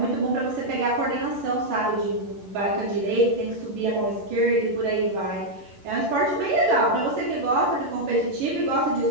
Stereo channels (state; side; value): late; left; 10 ms